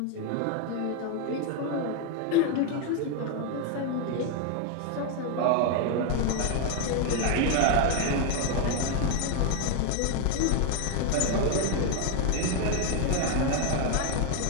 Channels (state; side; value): different; both; correlation 0.01